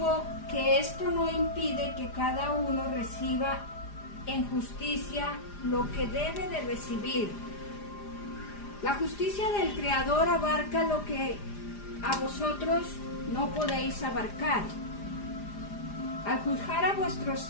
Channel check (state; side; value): late; right; 4.9 ms